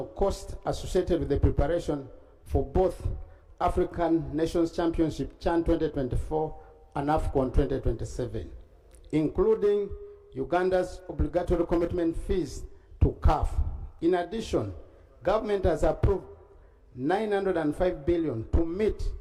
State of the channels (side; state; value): both; identical; correlation 1.00